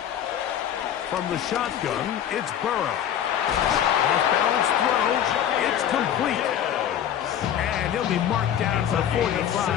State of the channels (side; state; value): right; quieter; 10.0 dB